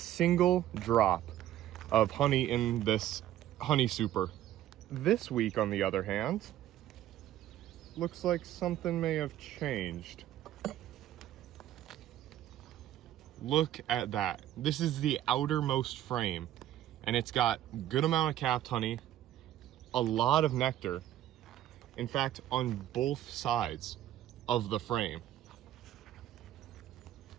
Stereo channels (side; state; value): left; quieter; 12.7 dB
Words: drop of honey in this honey super. This week, on the other hand, looks like something may have changed. Look at that. This is the outermost frame, and it's got a good amount of capped honey, a lot of nectar. In fact, on both sides of the frame.